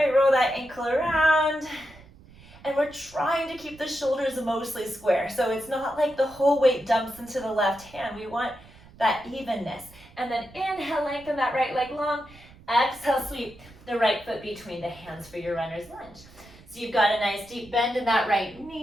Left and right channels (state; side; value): noise; right; rumble, 23 dB below the sound